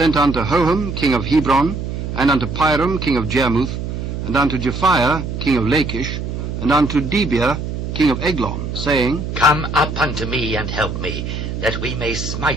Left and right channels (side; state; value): right; noise; hum, 5 dB below the sound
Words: unto Hoham, king of Hebron, and unto Piram, king of Jarmuth, and unto Japhia, king of Lachish, and unto Debir, king of Eglon, saying, Come up unto me and help me, that we may